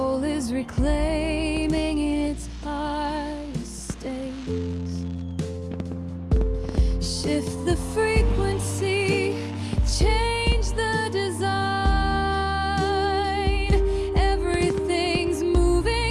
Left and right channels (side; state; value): both; identical; correlation 1.00